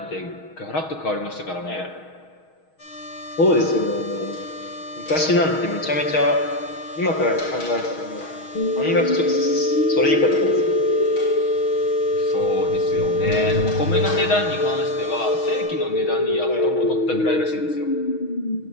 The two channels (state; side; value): late; right; 6.3 ms